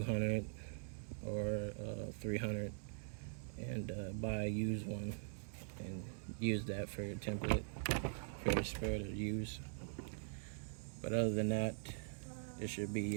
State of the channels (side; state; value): left; silent; digital silence